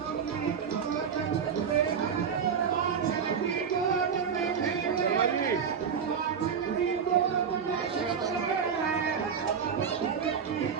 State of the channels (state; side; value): quieter; left; 6.9 dB